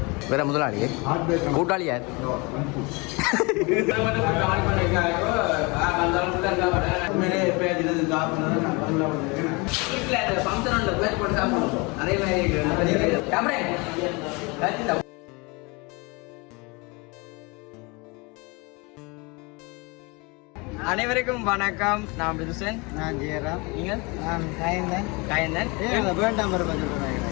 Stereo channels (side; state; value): right; quieter; 27.8 dB